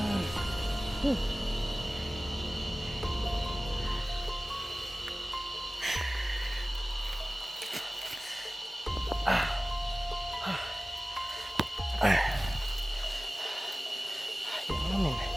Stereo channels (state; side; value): normal; both; correlation 0.97